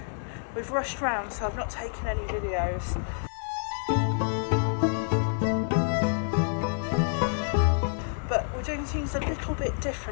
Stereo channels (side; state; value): right; silent; digital silence